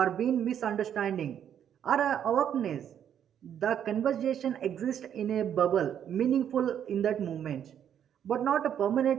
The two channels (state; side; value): quieter; left; 9.3 dB